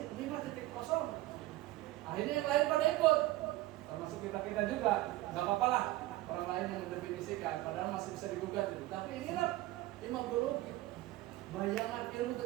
5.0. Akhirnya yang lain pada ikut, termasuk kita juga. Gak apa-apa lah orang lain yang mendefinisikan, padahal masih bisa digugat itu. Tapi inilah imagologi, bayangan ilmu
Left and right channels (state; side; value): quieter; left; 17.0 dB